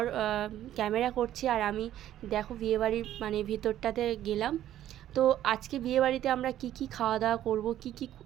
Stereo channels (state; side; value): quieter; left; 12.3 dB